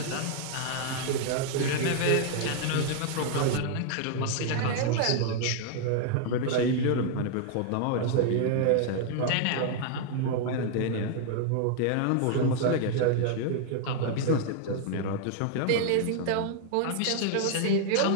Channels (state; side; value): different; both; correlation 0.00